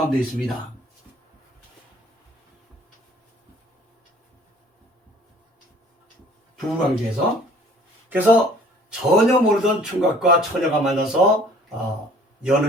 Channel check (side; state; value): both; normal; correlation 0.53